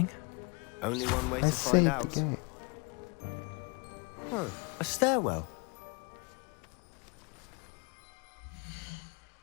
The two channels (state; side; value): quieter; right; 32.1 dB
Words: Only one way I to find saved out. the game. Huh, a stairwell.